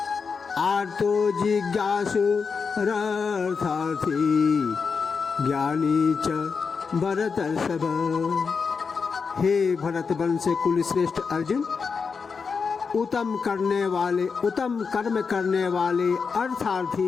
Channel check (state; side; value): quieter; right; 5.4 dB